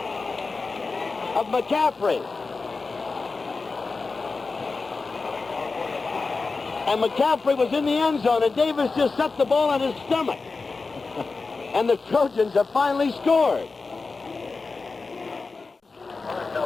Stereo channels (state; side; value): quieter; right; 4.1 dB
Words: of McCaffrey. And McCaffrey was in the end zone, and Davis just set the ball on his stomach. And the Trojans have finally scored.